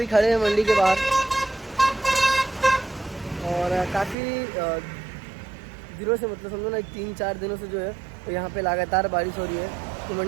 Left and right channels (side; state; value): left; drops out; at 4.2 s